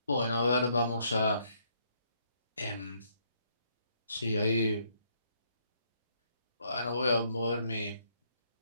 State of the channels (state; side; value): inverted; both; correlation -0.70